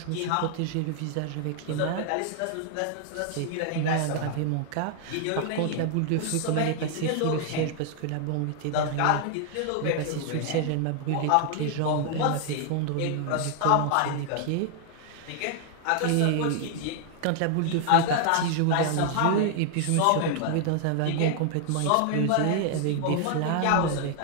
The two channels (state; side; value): different; both; correlation 0.00